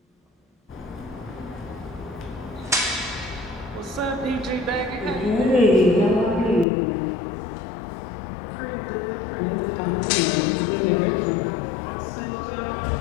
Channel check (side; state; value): right; drops out; at 6.7 s